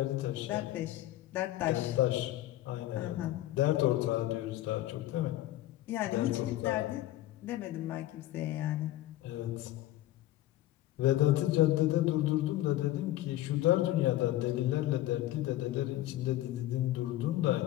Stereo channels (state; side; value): quieter; right; 15.0 dB